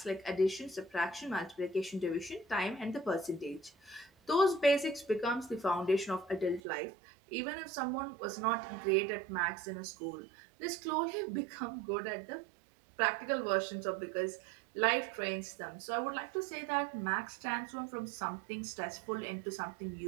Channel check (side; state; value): left; drops out; at 6.6 s